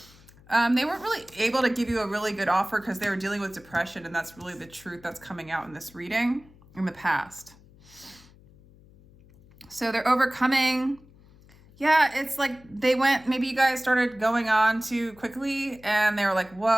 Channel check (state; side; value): noise; left; hum, 25 dB below the sound